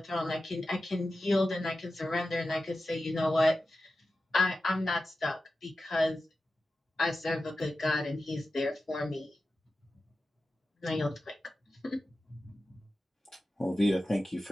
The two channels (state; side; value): normal; both; correlation 0.93